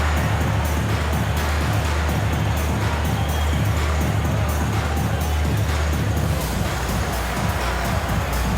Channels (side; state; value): both; identical; correlation 1.00